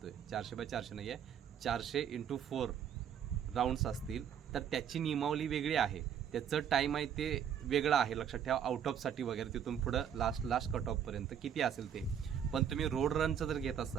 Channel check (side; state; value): left; quieter; 8.6 dB